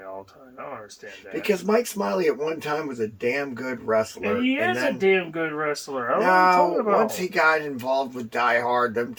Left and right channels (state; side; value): identical; both; correlation 1.00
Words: all the time? I don't understand that. Because Mike Smiley at one time was a damn good wrestler. And he is a damn good wrestler. I don't know what I'm talking about. Once he got involved with Die Hard, them